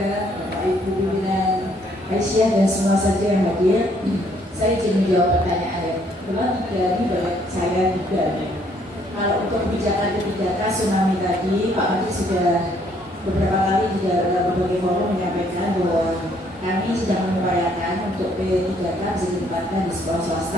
Bapak Ibu pimpinan Aisyah dan semua saja yang hadir. Saya ingin menjawab pertanyaan memang dari saya juga. Kalau untuk kebijakan kebijakan tsunami tadi, Pak Menteri sudah beberapa kali juga dalam berbagai forum menyampaikan bahwa kami sedang mengupayakan untuk P3K bisa ditempatkan di sekolah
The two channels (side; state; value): both; normal; correlation 0.66